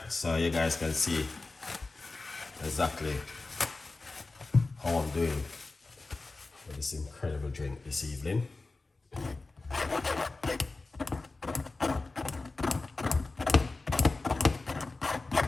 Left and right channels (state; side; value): quieter; right; 3.5 dB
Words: so you guys can see exactly how I'm doing with this incredible drink this evening.